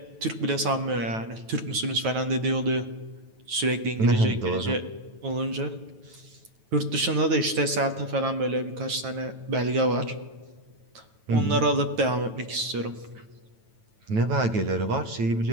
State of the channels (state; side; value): late; left; 9.2 ms